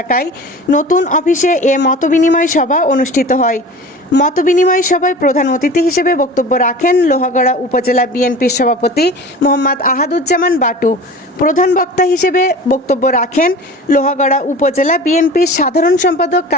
নতুন অফিসে এ মতবিনিময় সভা অনুষ্ঠিত হয়। মতবিনিময় সভায় প্রধান অতিথি হিসেবে বক্তব্য রাখেন লোহাগড়া উপজেলা বিএনপির সভাপতি মোহাম্মদ আহাদুজ্জামান বাটু। প্রধান বক্তা হিসেবে বক্তব্য রাখেন লোহাগড়া উপজেলা বিএনপির সাধারণ সম্পাদক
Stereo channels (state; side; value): normal; both; correlation 0.38